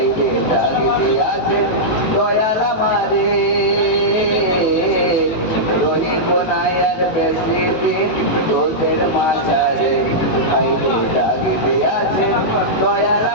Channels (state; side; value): late; right; 18 ms